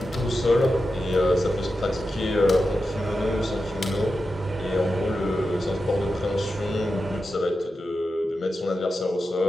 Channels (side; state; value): both; normal; correlation 0.90